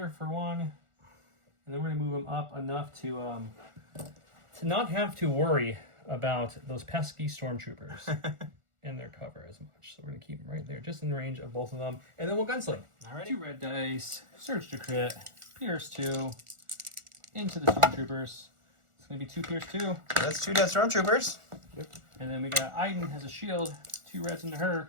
for one, and then we're gonna move him up enough to not have to worry about those pesky stormtroopers in their cover as much. So we're gonna keep them right there, just in range of both of them, and then we'll gunsling. All right. 2 red dice, surge to crit, pierce 2, into the stormtroopers. It's gonna be 2 pierce 2. That's 2 dead stormtroopers. And then we got Iden has a shield, 2 reds into her.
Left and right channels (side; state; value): left; late; 1.4 ms